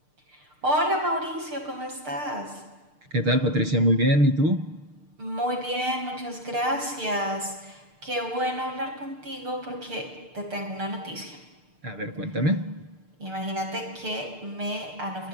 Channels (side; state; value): left; late; 6.7 ms